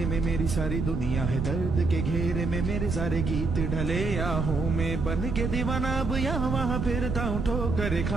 में, मेरी सारी दुनिया है दर्द के घेरे में। मेरे सारे गीत ढले आहों में, बन के दीवाना अब यहाँ वहाँ फिरता हूँ, ठोकर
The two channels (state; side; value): noise; right; rumble, 2 dB below the sound